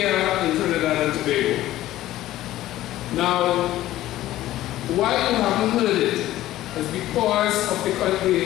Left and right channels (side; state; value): right; quieter; 14.8 dB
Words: in Trinidad and Tobago. Now, why you haven't heard it is because of the